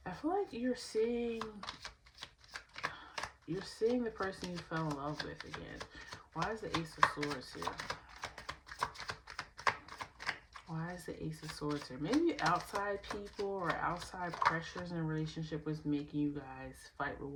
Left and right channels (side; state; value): both; identical; correlation 1.00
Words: I feel like you're seeing the person you fell in love with again. Why is the Ace of Swords here? Why is the Ace of Swords here? Maybe outside people or outside pressures in a relationship was making you guys fight with